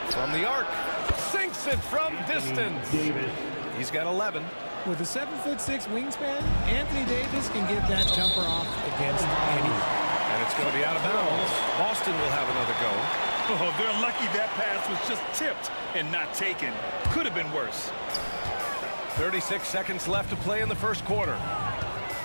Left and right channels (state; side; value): inverted; both; correlation -1.00